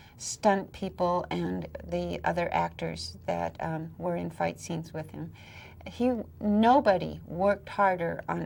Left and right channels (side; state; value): both; identical; correlation 1.00